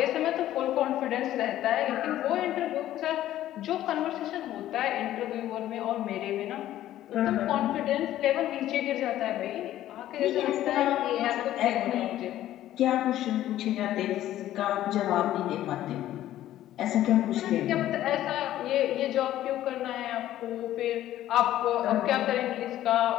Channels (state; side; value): quieter; right; 13.3 dB